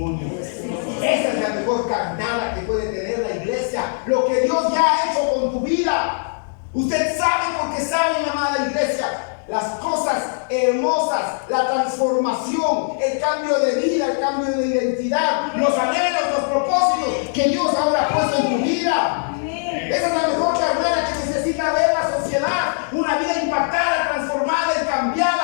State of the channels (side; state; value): right; silent; digital silence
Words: Esa es la mejor carnada que puede tener la iglesia. Lo que Dios ya ha hecho con tu vida. Usted sabe porque sabe, mi amada iglesia, las cosas hermosas, la transformación, el cambio de vida, el cambio de identidad, los anhelos, los propósitos que Dios ahora ha puesto en tu vida. Esa es la mejor carnada que necesita ver la sociedad. Una vida impactada, transformada y